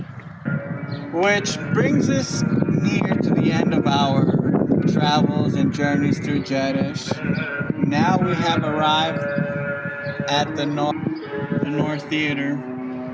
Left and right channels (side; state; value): both; identical; correlation 1.00